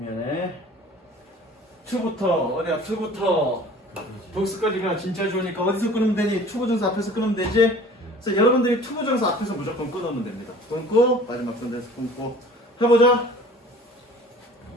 2부터. 어디야? 2부터. 복수까지가 진짜 좋으니까 어디서 끊으면 되니? 투부정사 앞에서 끊으면 되지? 그래서 여러분들이 투부정사 앞에서 무조건 끊으면 됩니다. 끊고 마지막 선에서 끊고 해보자.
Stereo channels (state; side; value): normal; both; correlation 0.47